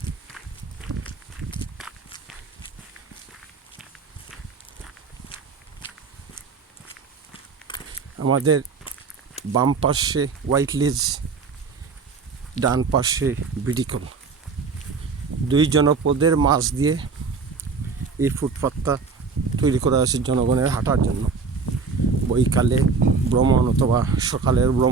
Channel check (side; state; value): left; quieter; 4.8 dB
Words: আমাদের বাম পাশে হোয়াইট লেজ, ডান পাশে বিডিকল, দুই জনপদের মাঝ দিয়ে এই ফুটপাথটা তৈরি করা হয়েছে জনগণের হাঁটার জন্য। বৈকালে ভ্রমণ অথবা সকালের